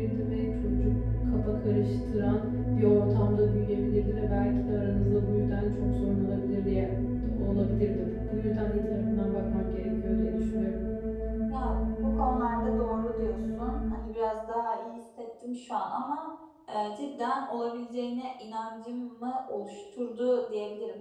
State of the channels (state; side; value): identical; both; correlation 1.00